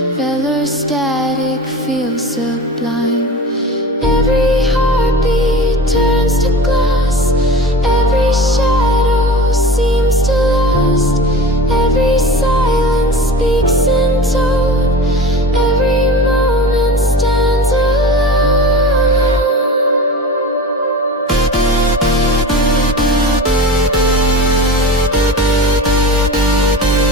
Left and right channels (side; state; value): both; normal; correlation 0.33